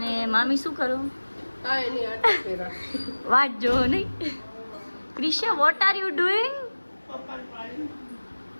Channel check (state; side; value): inverted; both; correlation -1.00